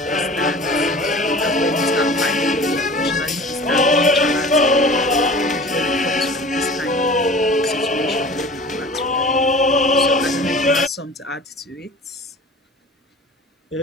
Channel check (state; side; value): normal; both; correlation 0.40